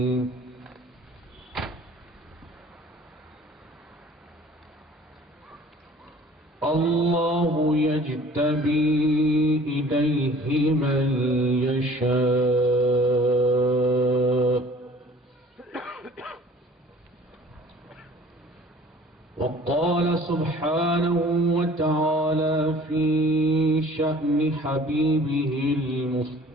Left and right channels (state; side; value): normal; both; correlation 0.50